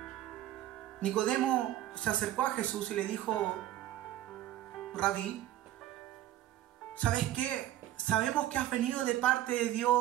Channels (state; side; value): quieter; left; 13.6 dB